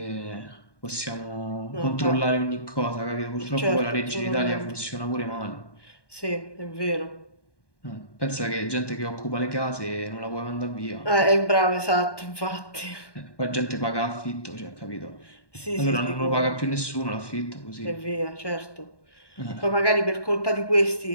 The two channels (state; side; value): late; right; 1.2 ms